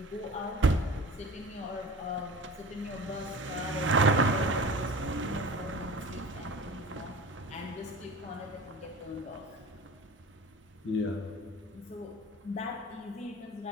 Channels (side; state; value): both; normal; correlation 0.38